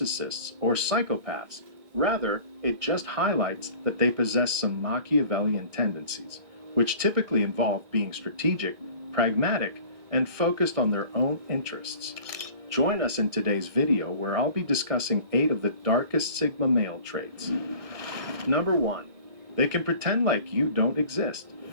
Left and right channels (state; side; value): late; left; 2.0 ms